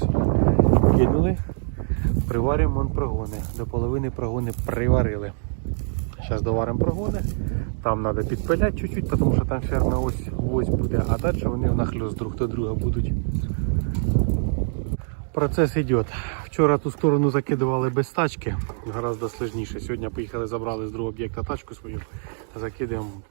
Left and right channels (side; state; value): left; silent; 62 dB below the other